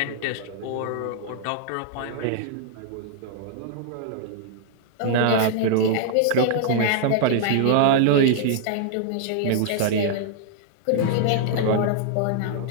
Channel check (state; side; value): different; both; correlation -0.01